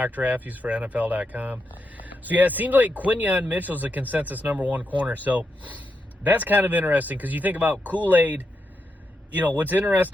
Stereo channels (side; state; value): both; normal; correlation 0.84